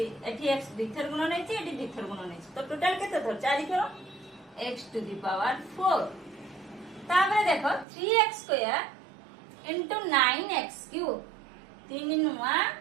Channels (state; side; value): drops out; left; at 7.9 s